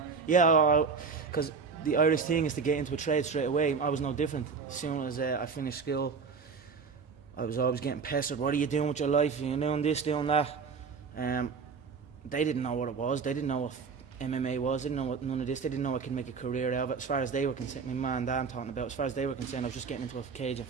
Yeah, because the Irish thing is to get into a trade straight away. I was no different. As soon as I finished school, I was always getting pestered. What are you doing with your life? You're doing this, doing that. They didn't know what it was. They didn't know what MMA was. They didn't know what none of this. They didn't know I could make a career out of it. As far as they were concerned, my man and dad I'm talking about, as far as they were concerned, I was just getting into a cage and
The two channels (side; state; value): left; quieter; 5.3 dB